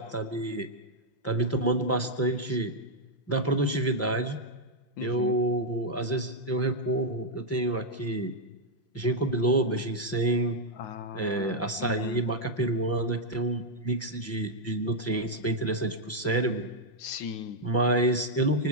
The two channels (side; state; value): right; late; 5.8 ms